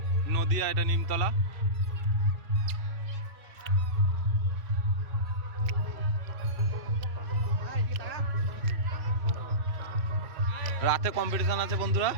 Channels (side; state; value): left; late; 2.7 ms